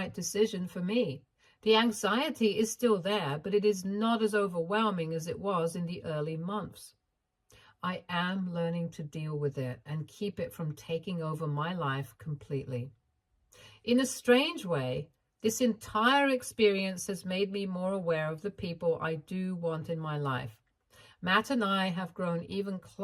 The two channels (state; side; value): identical; both; correlation 1.00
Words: decision for me. The anxiety is still there, but it is not as overwhelming as it was in the early months. I am learning to deal with it and keep it from taking over my life completely. In a strange way, this entire experience has made me more aware of the people I do want in my life. Matt and I have grown even